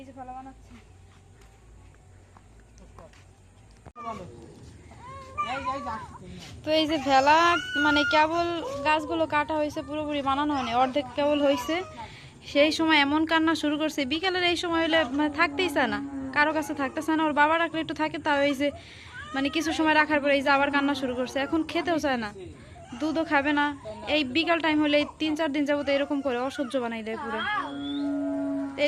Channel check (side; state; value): both; identical; correlation 1.00